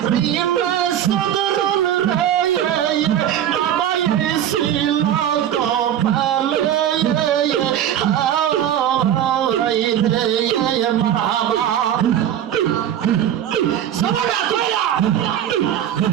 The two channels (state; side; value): quieter; left; 10.5 dB